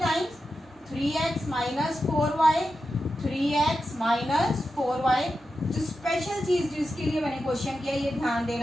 3x minus 4y, 3x minus 4y। जो स्पेशल चीज जिसके लिए मैंने क्वेश्चन किया, ये ध्यान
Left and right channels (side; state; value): both; normal; correlation 0.90